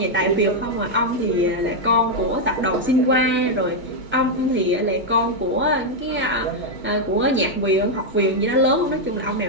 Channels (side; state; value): both; normal; correlation 0.00